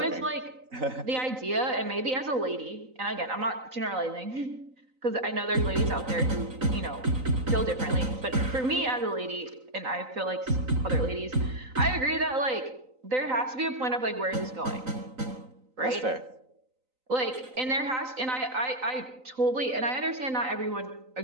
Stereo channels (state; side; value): late; left; 3.9 ms